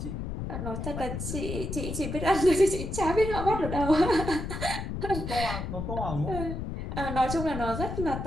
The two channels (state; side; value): noise; left; rumble, 5 dB below the sound